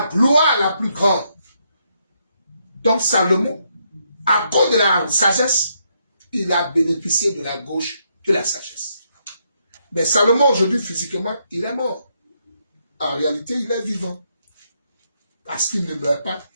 gloire la plus grande. Donc Salomon, à cause de la sagesse, il a bénéficié de la gauche de la sagesse. Mais Salomon, aujourd'hui, physiquement, il est mort. En réalité, il est vivant. Parce qu'il ne meurt pas,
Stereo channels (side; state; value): both; inverted; correlation -0.77